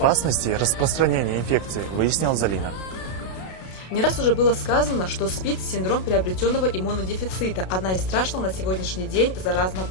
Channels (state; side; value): late; right; 32 ms